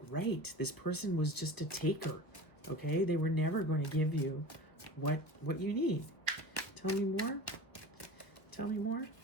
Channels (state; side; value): late; right; 1.1 ms